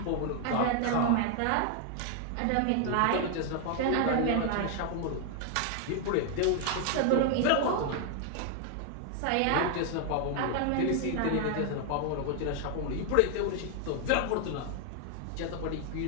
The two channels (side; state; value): both; different; correlation 0.00